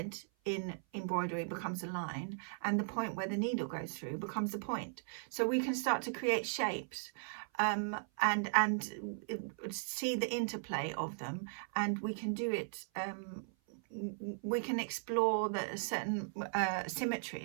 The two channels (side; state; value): left; silent; 53 dB below the other